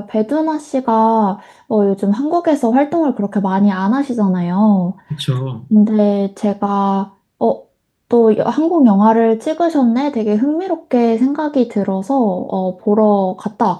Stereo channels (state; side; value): identical; both; correlation 1.00